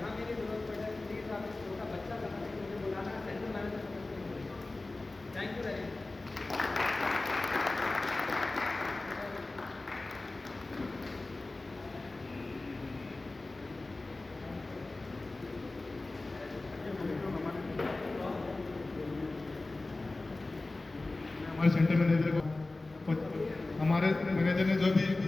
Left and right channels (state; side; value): quieter; right; 3.1 dB